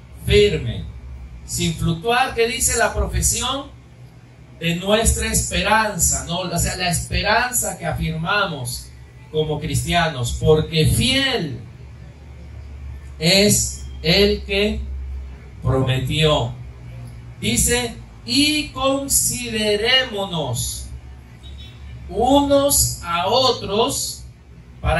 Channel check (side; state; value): both; identical; correlation 1.00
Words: Firme. Sin fluctuar, ¿qué dice la profesión de nuestra esperanza? ¿No? O sea, la esperanza que afirmamos como cristianos, porque fiel es el que prometió. Dice, y considerémonos unos a otros,